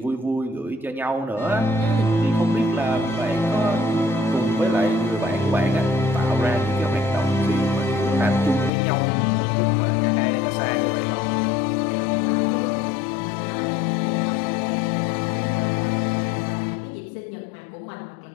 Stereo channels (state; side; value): drops out; right; at 8.7 s